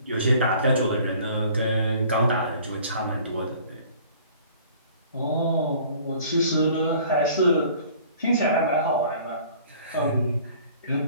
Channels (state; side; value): inverted; both; correlation -0.51